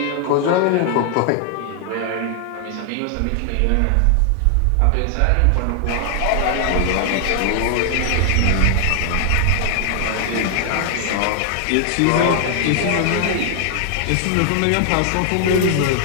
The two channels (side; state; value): both; different; correlation 0.00